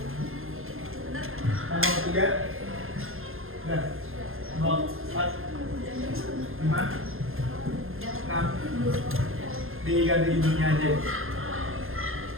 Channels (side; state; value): left; late; 0.60 ms